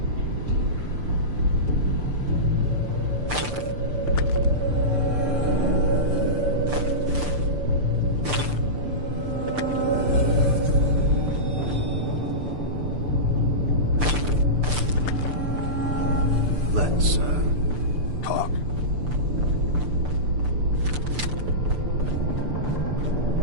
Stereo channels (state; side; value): late; left; 6.8 ms